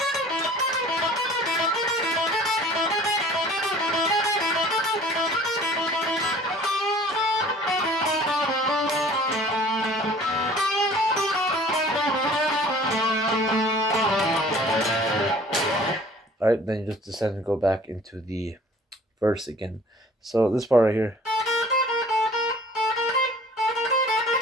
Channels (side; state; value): both; normal; correlation 0.50